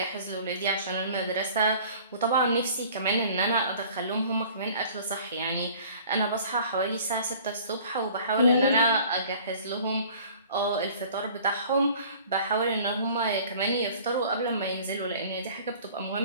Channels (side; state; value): both; inverted; correlation -0.49